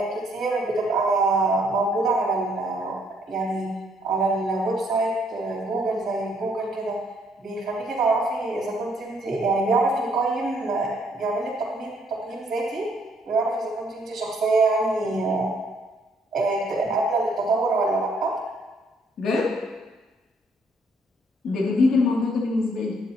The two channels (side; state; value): both; normal; correlation 0.68